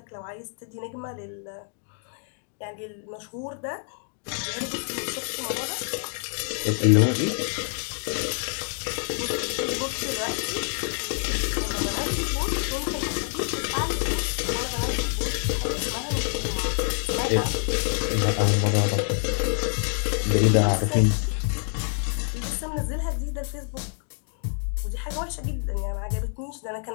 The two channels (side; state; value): right; silent; 60 dB below the other